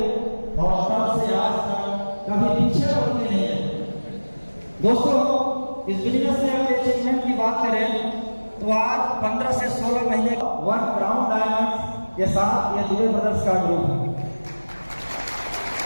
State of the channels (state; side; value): inverted; both; correlation -1.00